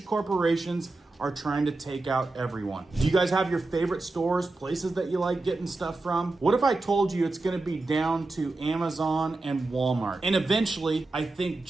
corporations are trying to take out everyone. Do you guys have your favorite stores, places that you like getting stuff from? What if I told you it's gonna be down to Amazon and Walmart? And eventually, I think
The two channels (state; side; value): quieter; left; 3.2 dB